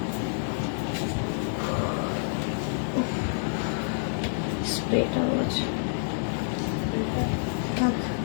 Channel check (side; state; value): right; silent; 59 dB below the other